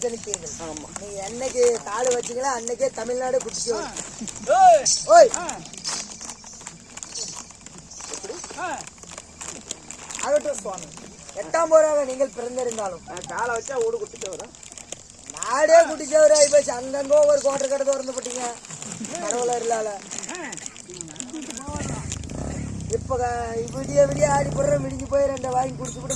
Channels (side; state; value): both; identical; correlation 1.00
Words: ஜனித்தீர்கள். ஆமா, நீங்க என்னைக்கு காடு வச்சீங்களா அன்னைக்கே தமிழ்நாடு குடிச்சு ஓய் ஆகட்டும் சுவாமி. 8ஆம் போராக நீங்கள் பிறந்திருந்தாலும் நான் காலை வச்சா ஓடு குட்டிட்டு வரேன். நாடே குடிச்சவராய் போச்சு. அங்கங்க ஒரு கோட்டை கடை திறந்து போட்டீங்க கடவுளர் இல்லால. இப்ப விடிய விடிய ஆடி போடுற விடிஞ்சு போய் 2 வாங்கி குடிச்சு கூட